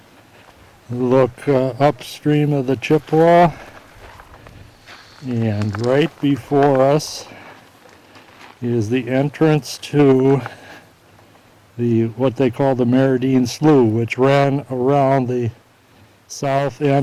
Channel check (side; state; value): both; identical; correlation 1.00